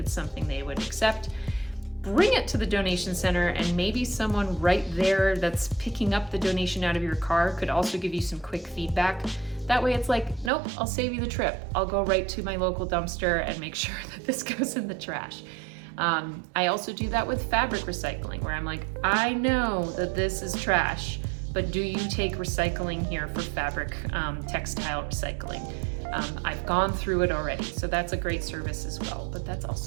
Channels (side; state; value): left; drops out; at 10.5 s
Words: something they would accept. Bring it to the donation center, and maybe someone right there that's picking up the donation out of your car could also give you some quick feedback. That way it's like, nope, I'll save you the trip. I'll go right to my local dumpster and make sure that this goes in the trash. I also do that with fabric recycling, where I'm like, I know that this is trash, but do you take recycling here for fabric textile recycling? I've gone through it already, so that's a great service as well. But that's